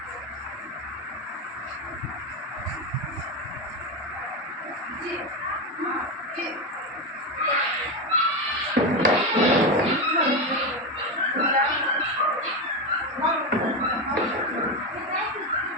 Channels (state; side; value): normal; both; correlation 0.13